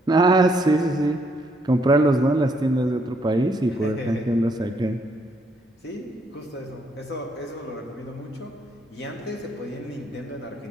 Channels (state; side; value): normal; both; correlation 0.72